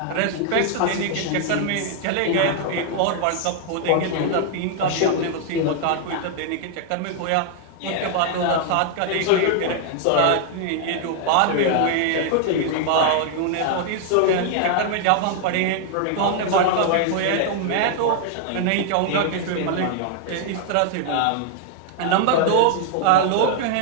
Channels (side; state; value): both; different; correlation 0.00